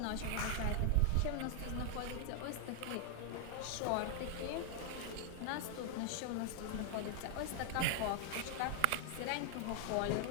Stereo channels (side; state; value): both; different; correlation 0.00